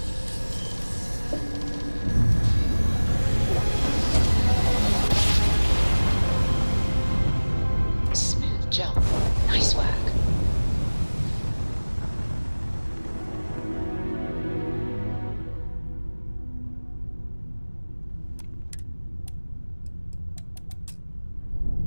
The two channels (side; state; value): both; inverted; correlation -1.00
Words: Smooth jump. Nice work.